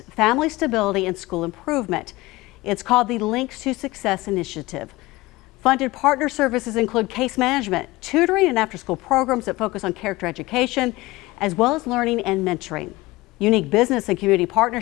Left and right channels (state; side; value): quieter; right; 20.4 dB